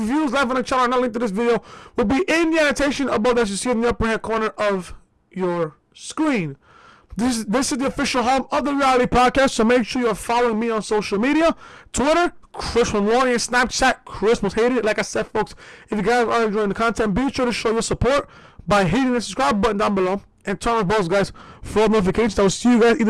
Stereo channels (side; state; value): both; identical; correlation 1.00